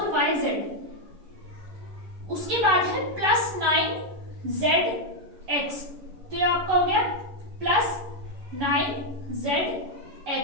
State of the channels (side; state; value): left; late; 11 ms